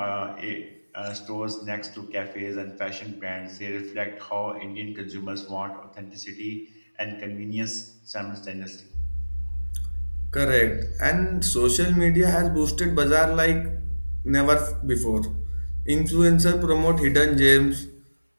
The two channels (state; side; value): inverted; both; correlation -1.00